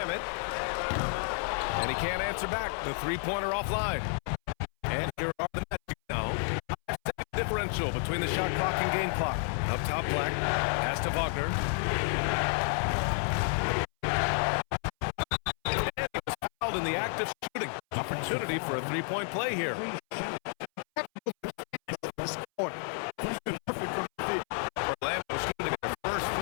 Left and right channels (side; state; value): right; silent; 57 dB below the other